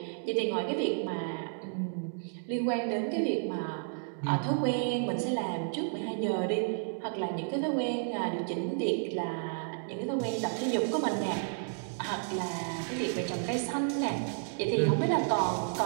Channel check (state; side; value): silent; left; digital silence